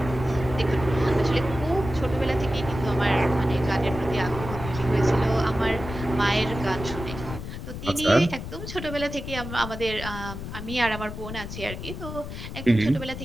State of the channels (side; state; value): left; noise; rumble, 8 dB below the sound